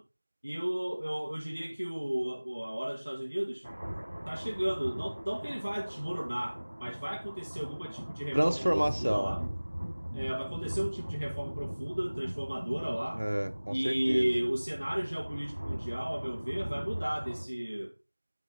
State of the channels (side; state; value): both; inverted; correlation -1.00